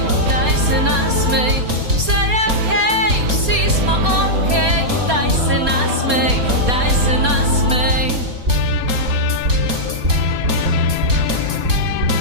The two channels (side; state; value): left; late; 4.2 ms